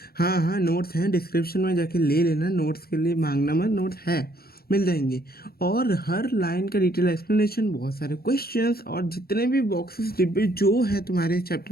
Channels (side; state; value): right; late; 0.45 ms